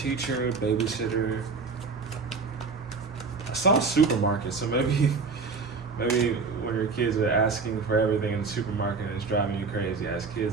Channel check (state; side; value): quieter; left; 4.6 dB